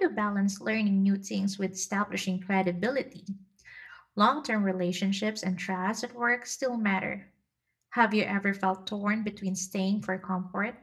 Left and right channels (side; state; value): both; identical; correlation 1.00